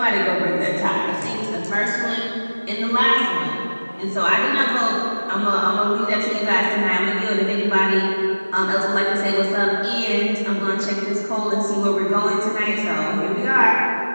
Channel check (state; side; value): inverted; both; correlation -1.00